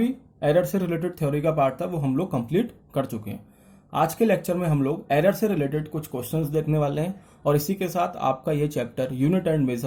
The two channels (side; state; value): both; identical; correlation 1.00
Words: error से related theory का part था वो हम लोग कंप्लीट कर चुके हैं. आज के लेक्चर में हम लोग एरर से रिलेटेड कुछ क्वेश्चंस देखने वाले हैं और इसी के साथ आपका ये chapter unit and